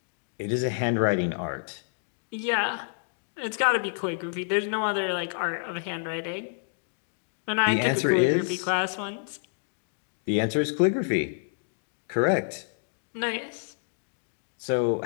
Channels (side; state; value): right; silent; digital silence